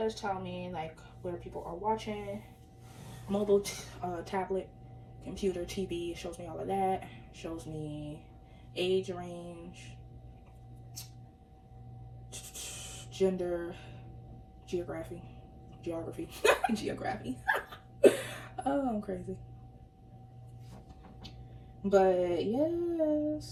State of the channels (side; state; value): both; identical; correlation 1.00